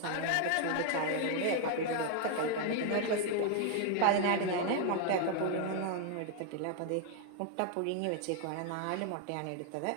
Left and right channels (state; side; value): different; both; correlation 0.00